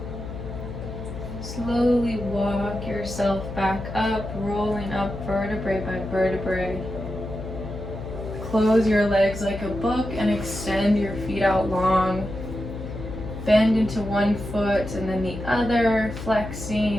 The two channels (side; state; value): left; noise; hum, 9 dB below the sound